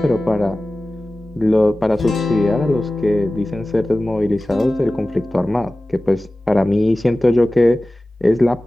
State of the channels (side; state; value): both; normal; correlation 0.97